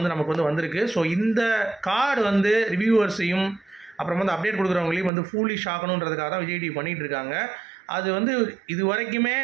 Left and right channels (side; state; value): left; drops out; at 5.1 s